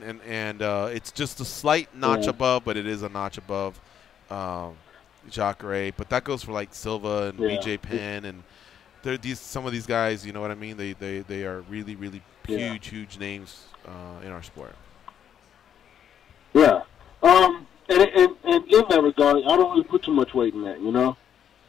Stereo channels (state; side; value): quieter; right; 9.1 dB